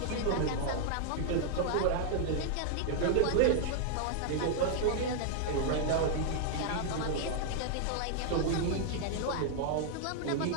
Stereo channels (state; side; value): different; both; correlation 0.00